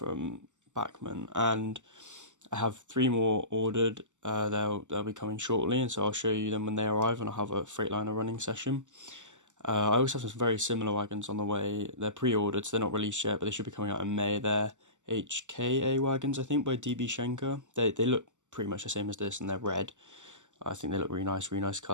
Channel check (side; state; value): left; late; 0.85 ms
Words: Bachmann, and I have 3 more ordered. They'll be coming shortly, and so I'll show you them when they arrive, and I'll have a Freightliner running session. I also have some very similar wagons on the way. They're pre-ordered, so they're not released yet, but they should be coming out in May. They're HKA wagons, I think, by DB Schenker. They look pretty much the same as this, and they're red. I think they look really nice